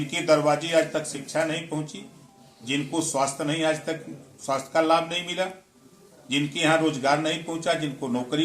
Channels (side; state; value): both; identical; correlation 1.00